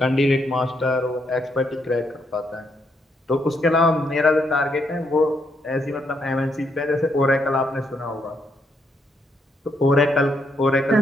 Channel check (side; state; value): both; normal; correlation 0.76